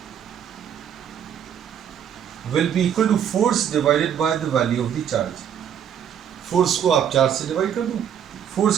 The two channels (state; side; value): quieter; left; 8.8 dB